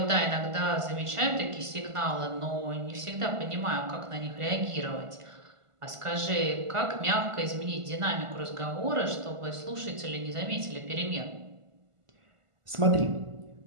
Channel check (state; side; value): late; left; 1.5 ms